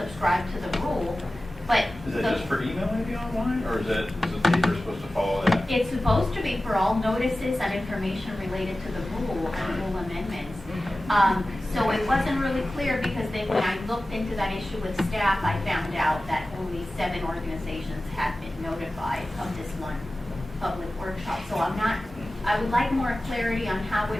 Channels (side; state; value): both; normal; correlation 0.96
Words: to the rule. But is that just for email maybe online, or is the paper supposed to follow that? It's supposed to be for all notices and information related to the rule and rule amendments. So it wasn't really clear, because then when I looked into that issue with staff, I found out that only 7 organizations had been notified of this one public workshop. So I would like more clarity on how